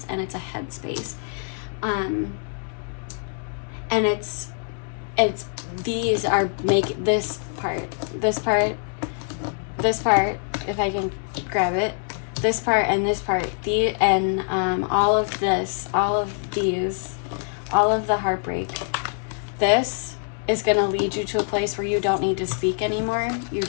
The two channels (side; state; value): right; silent; 62 dB below the other